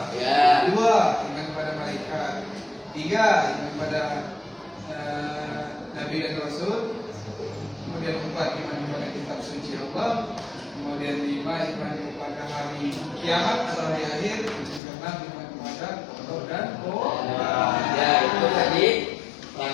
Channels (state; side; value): drops out; right; at 14.8 s